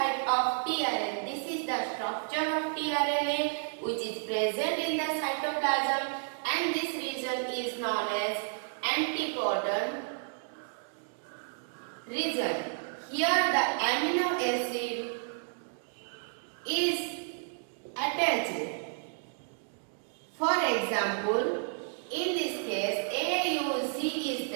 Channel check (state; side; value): silent; left; digital silence